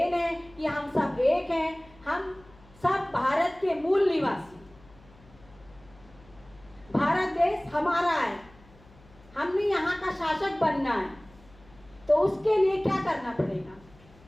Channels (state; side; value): noise; left; hum, 26 dB below the sound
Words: है कि हम सब एक हैं, हम सब भारत के मूल निवासी, भारत देश हमारा है, हमने यहाँ का शासक बनना है, तो उसके लिए क्या करना पड़ेगा,